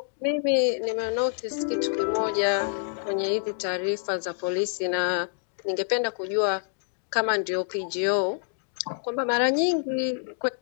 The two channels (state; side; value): silent; right; digital silence